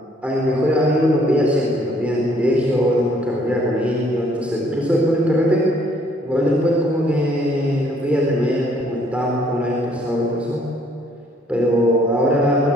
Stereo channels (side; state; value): both; normal; correlation 0.63